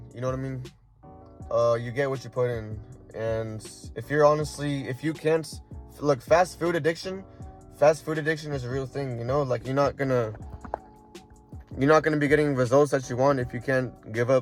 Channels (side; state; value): both; identical; correlation 1.00